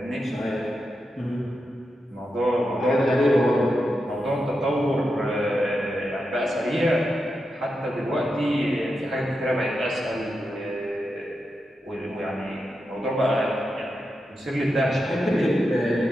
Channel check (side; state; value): both; normal; correlation 0.87